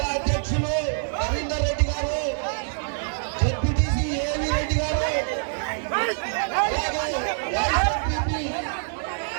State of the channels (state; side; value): silent; left; digital silence